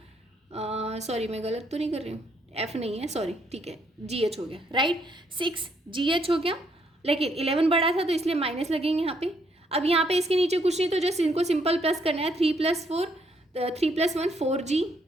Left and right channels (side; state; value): both; normal; correlation 0.72